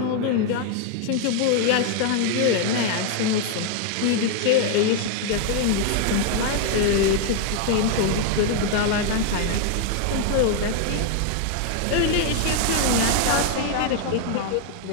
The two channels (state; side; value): different; both; correlation 0.00